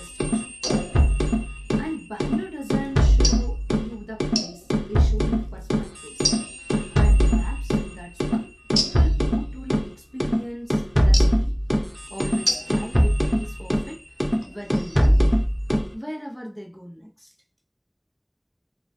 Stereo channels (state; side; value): identical; both; correlation 1.00